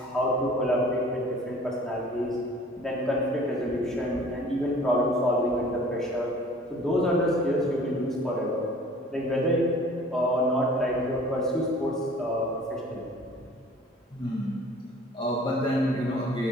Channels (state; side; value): normal; both; correlation 0.49